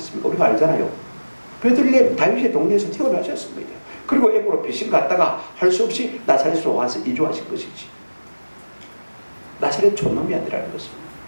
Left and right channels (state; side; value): inverted; both; correlation -1.00